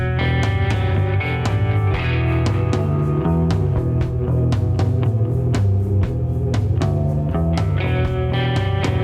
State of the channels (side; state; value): both; identical; correlation 1.00